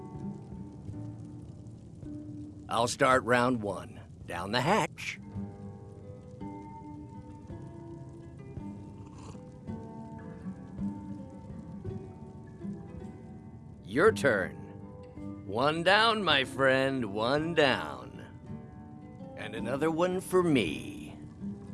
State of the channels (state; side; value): identical; both; correlation 1.00